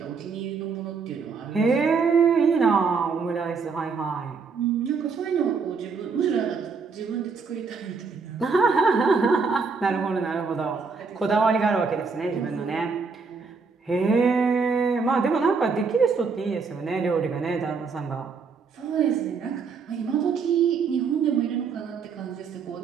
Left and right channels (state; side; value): quieter; left; 5.0 dB